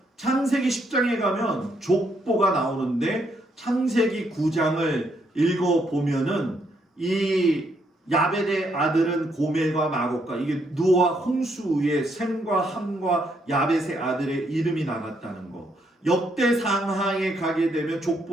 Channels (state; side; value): normal; both; correlation 0.74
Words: 창세기 10장에 가면 족보가 나오는데 창세기 9장을 읽어보면은 이 야벳의 아들은 고멜과 마곡과 이게 누아와 홍수의 셈과 함과 야벳의 아들의 이름이 나갔다는 거. 역대상하에 가게 되면